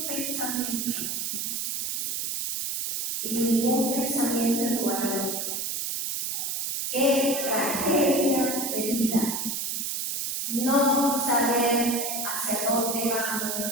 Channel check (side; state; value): right; noise; hiss, 2 dB below the sound